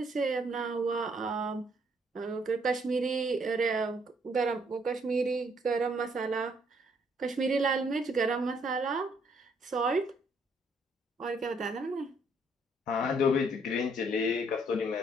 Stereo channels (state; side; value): normal; both; correlation 0.68